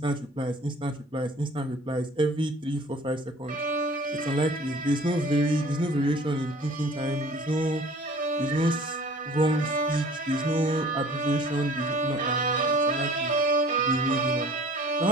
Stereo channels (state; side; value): normal; both; correlation 0.48